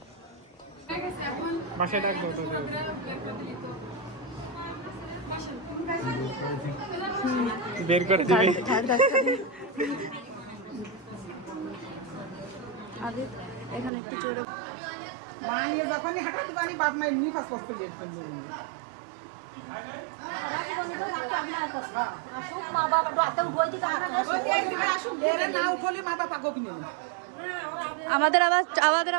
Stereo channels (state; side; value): drops out; left; at 13.9 s